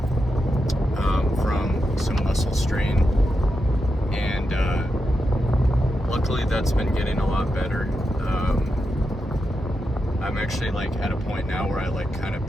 from some muscle strain, and luckily that's been getting a lot better. I'm actually at a point now where I kind of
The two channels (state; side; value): normal; both; correlation 0.87